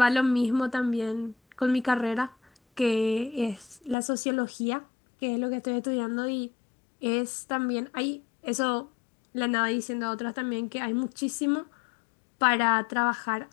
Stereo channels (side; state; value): right; drops out; at 4.0 s